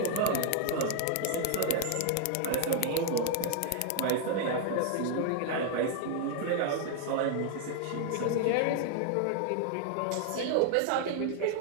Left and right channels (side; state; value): both; different; correlation 0.00